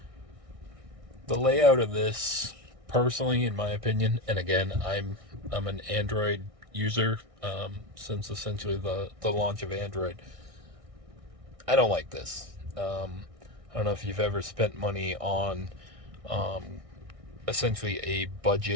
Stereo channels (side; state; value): left; late; 1.6 ms